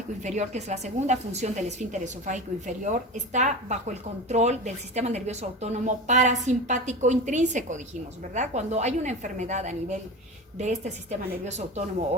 inferior, que es la segunda función del esfínter esofágico inferior, está bajo el control del sistema nervioso autónomo parasimpático intrínseco, dijimos, ¿verdad? Cuando hay una enfermedad a nivel de este sistema nervioso autónomo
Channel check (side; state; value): both; normal; correlation 0.28